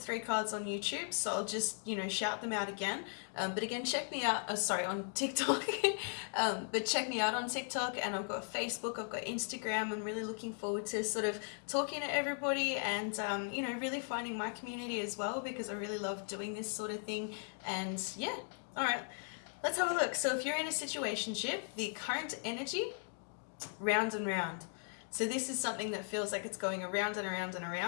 3 cards on YouTube, so I'll just, shout them out again. But again, check me out, on TikTok. But check me out on TikTok, and I've got Facebook, I've got Instagram. I'm really looking forward to sort of talking to everybody and, really finding my community as well, because I really love doing this sort of thing. And yeah, all right, let's have a look. So if you're in a situationship, the current energy, round and round. So this is something that feels like it's going around and around and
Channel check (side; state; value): right; silent; 53 dB below the other